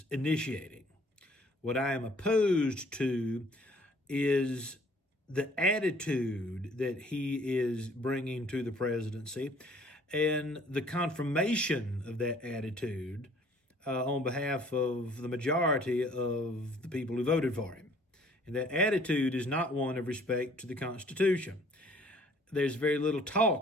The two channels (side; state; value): both; normal; correlation 0.57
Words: initiating. What I am opposed to is the attitude that he is bringing to the presidency and the confirmation of that attitude on behalf of the majority of the people who voted for him. And that attitude is not one of respect to the Constitution. There's very little